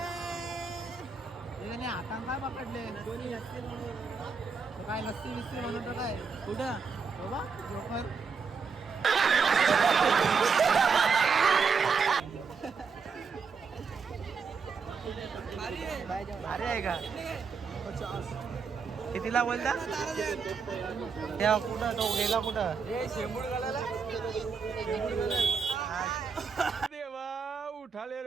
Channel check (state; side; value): quieter; left; 5.4 dB